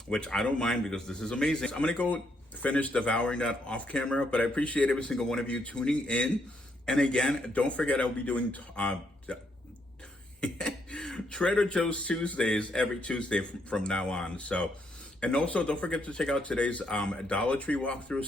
which I don't mind because this is amazing. So I'm gonna go finish devouring that off camera, but I appreciate every single one of you tuning in. And again, don't forget I'll be doing Trader Joe's Tuesdays every Tuesday from now on. So, and also don't forget to check out today's Dollar Tree walkthrough.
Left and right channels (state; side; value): normal; both; correlation 0.74